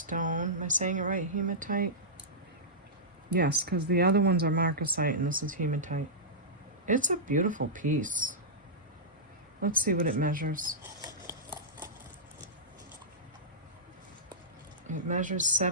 Am I saying it right? Hematite? Yes, because the other ones are marcasite and this is hematite. It's a beautiful piece. Let's see what it measures. It measures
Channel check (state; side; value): normal; both; correlation -0.14